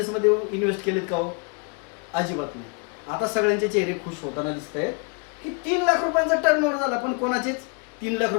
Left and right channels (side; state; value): right; quieter; 35.4 dB